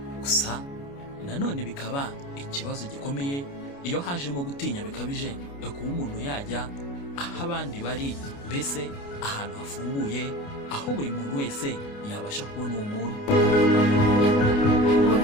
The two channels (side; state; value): right; late; 29 ms